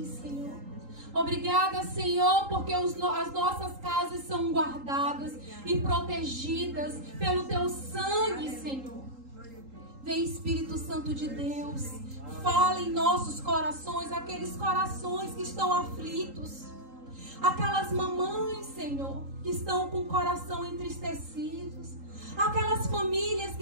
Senhor. Obrigada, Senhor, porque as nossas casas são guardadas e protegidas pelo Teu sangue, Senhor. Vem, Espírito Santo de Deus, fala em nossos corações, aqueles corações que estão aflitos, aquelas mamães, Senhor, que estão com o coração entristecidos, aquelas famílias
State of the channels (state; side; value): late; left; 3.8 ms